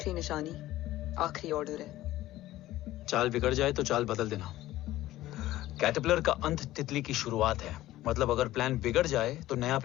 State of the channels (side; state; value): right; quieter; 15.5 dB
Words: निशानी, आखिरी ऑर्डर है। चाल बिगड़ जाए तो चाल बदल देना। कैटरपिलर का अंत तितली की शुरुआत है। मतलब अगर प्लान बिगड़ जाए तो नया